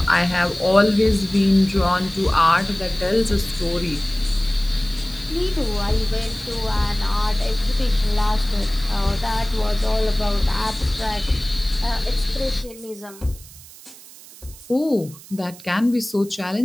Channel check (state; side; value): noise; right; hiss, 19 dB below the sound